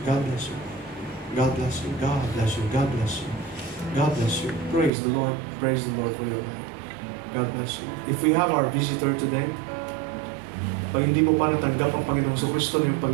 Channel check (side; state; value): left; drops out; at 4.9 s